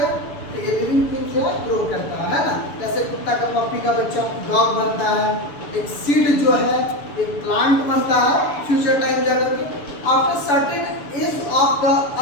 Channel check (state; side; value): late; right; 7.0 ms